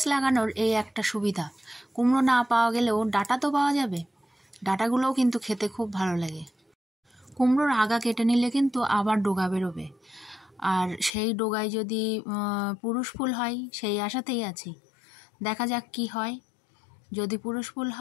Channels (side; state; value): right; drops out; at 11.1 s